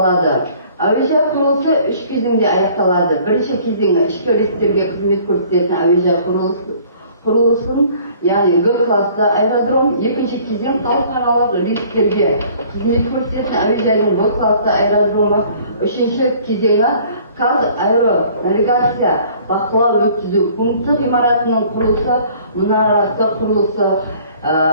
Әуежай құрылысы 3 кезеңде аяқталады. Бірінші кезеңі ішкі рейстерге қызмет көрсететін әуежай құрылысын, яғни Г классы аэродром. Екінші кезең халықаралық рейстерге қызмет көрсететін әуежайдың Б классы аэродромы. Үшінші кезеңі қазаэронавигация бақылау өткізу пункті ғимаратының құрылысы, мұнарасы құрылысы.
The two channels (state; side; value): inverted; both; correlation -0.54